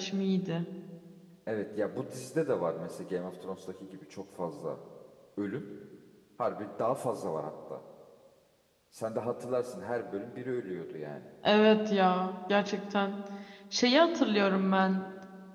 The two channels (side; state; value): both; identical; correlation 1.00